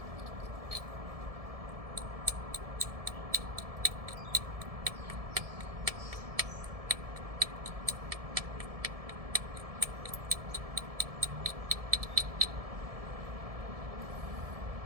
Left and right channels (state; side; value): late; left; 1.7 ms